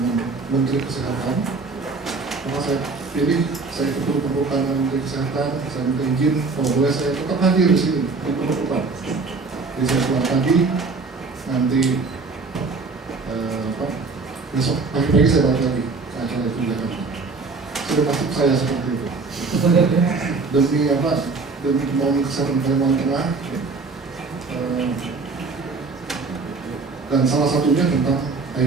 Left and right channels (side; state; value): left; quieter; 4.2 dB